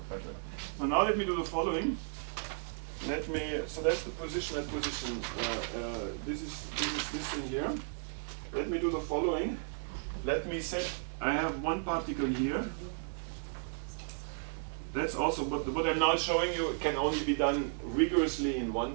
better. So now let me do the following. So that's the position. This is this thing here. Let me do the following. Let me set, I have one particle here. That's also what I'm now showing you can only be done rigorously in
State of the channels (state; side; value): silent; left; 55 dB below the other